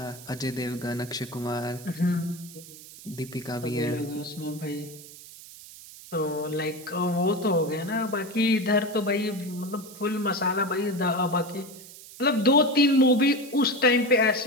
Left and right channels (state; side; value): noise; right; hiss, 17 dB below the sound